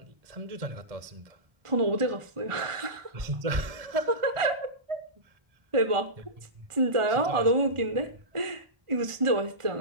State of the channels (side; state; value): left; late; 1.4 ms